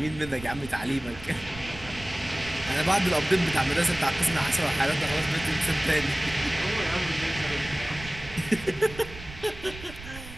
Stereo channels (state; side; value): noise; right; rumble, 15 dB below the sound